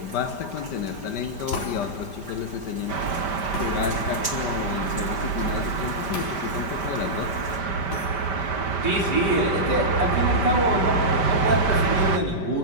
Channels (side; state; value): right; late; 5.1 ms